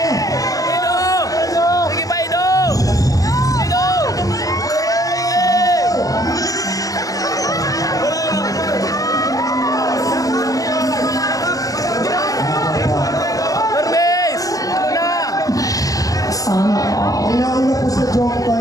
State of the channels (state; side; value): late; right; 0.17 ms